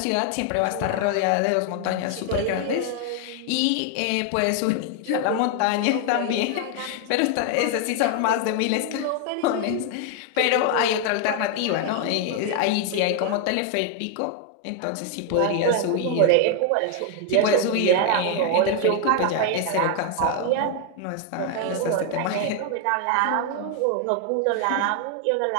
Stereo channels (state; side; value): different; both; correlation 0.00